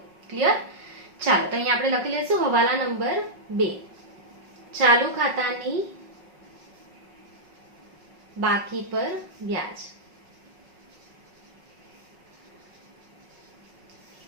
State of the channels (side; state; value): left; late; 5.4 ms